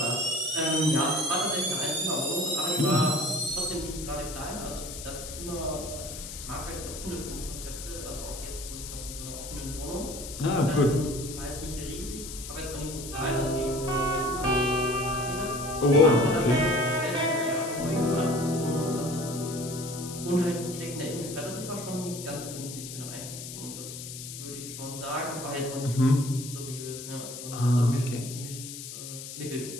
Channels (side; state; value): left; noise; hiss, 10 dB below the sound